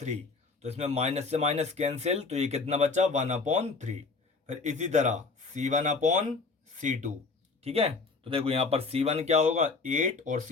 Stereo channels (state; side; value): quieter; right; 4.2 dB